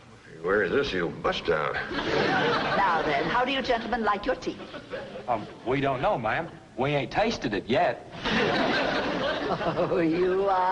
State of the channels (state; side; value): identical; both; correlation 1.00